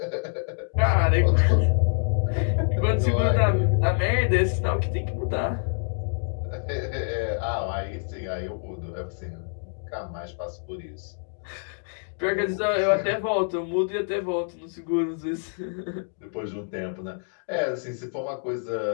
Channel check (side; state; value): right; silent; digital silence